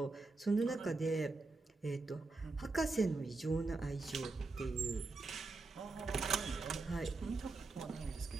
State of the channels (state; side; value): quieter; left; 3.6 dB